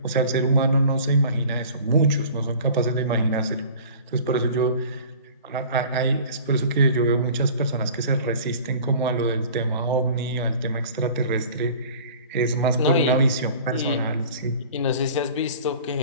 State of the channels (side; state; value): both; inverted; correlation -0.44